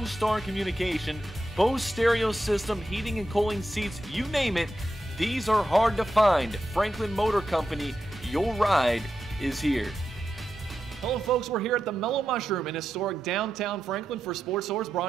communication, Bose stereo system, heating and cooling seats, you name it. These are hard to find. Franklin Motor Company, your ride is here. Hello folks, we're here at the Mellow Mushroom in historic downtown Franklin for Sports Source,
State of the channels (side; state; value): both; normal; correlation 0.88